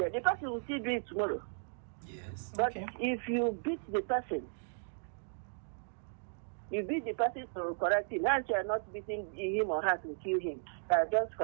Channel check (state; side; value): silent; left; digital silence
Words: The person will still do it tomorrow. Yes. But if you beat the person, to correct him. Now you are not beating him or her to kill him. You are just